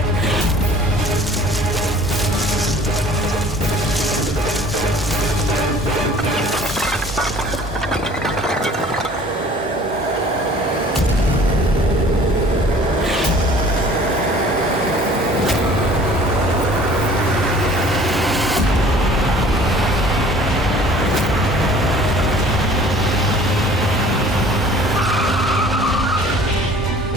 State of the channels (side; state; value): both; normal; correlation 0.50